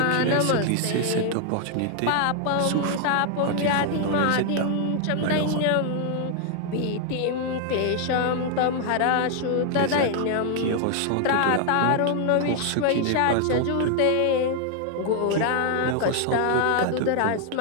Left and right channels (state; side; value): different; both; correlation 0.00